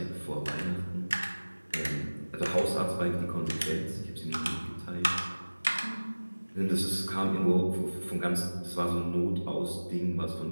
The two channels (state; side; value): inverted; both; correlation -1.00